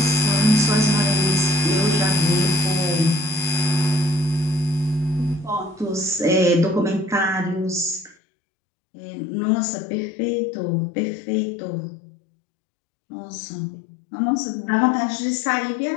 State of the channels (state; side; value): drops out; right; at 8.2 s